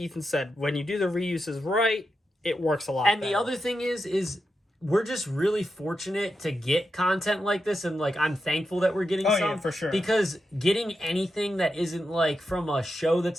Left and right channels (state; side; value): normal; both; correlation 0.87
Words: Ethan said, when you do the reuses right, it works a lot better. The other thing is we're just really fortunate to get content like this, and like I'm thankful that we're getting some. Yeah, for sure. Because getting anything that isn't like from a show